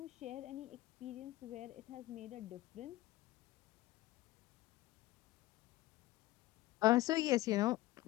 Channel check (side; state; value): right; quieter; 17.2 dB